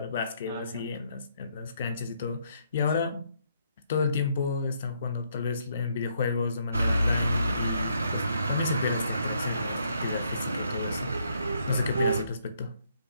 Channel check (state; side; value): inverted; both; correlation -0.72